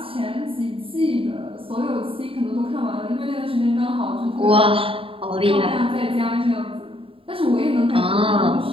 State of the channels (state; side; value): late; left; 0.27 ms